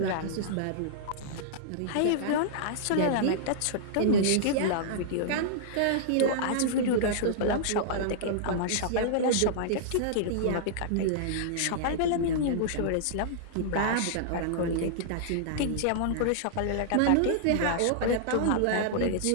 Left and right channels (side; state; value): both; different; correlation -0.02